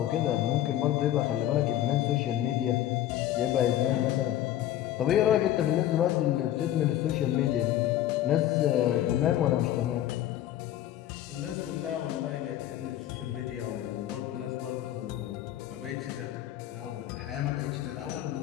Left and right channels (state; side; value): quieter; right; 12.6 dB